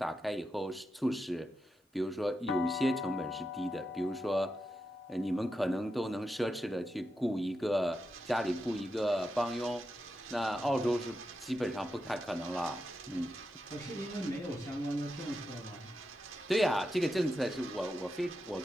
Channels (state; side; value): normal; both; correlation 0.87